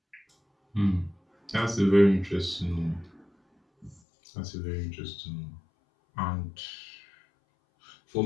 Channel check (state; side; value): drops out; right; at 4.0 s